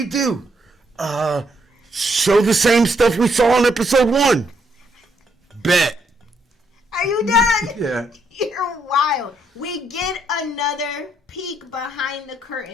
do? Show the same stuff we saw in episode 1. Bet. Are you done? Yeah. You're wild. We get another peek behind the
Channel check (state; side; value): normal; both; correlation 0.74